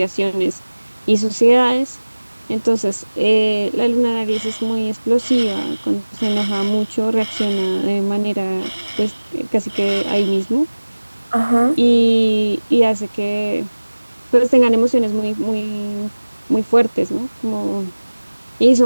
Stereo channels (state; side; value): inverted; both; correlation -1.00